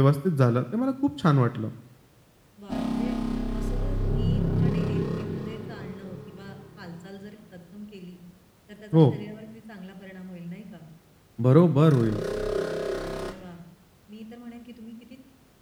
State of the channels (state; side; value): identical; both; correlation 1.00